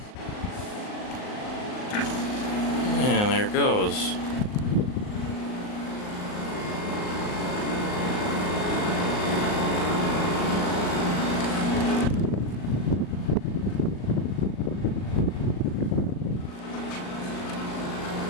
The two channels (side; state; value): right; late; 38 ms